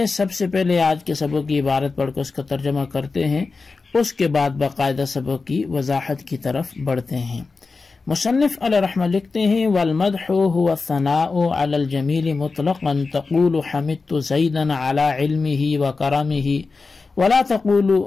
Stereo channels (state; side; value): quieter; right; 4.2 dB